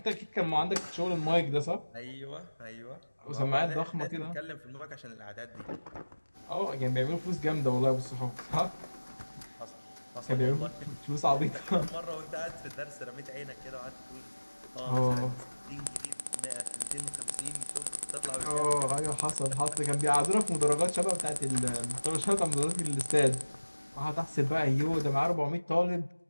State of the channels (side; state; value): both; inverted; correlation -1.00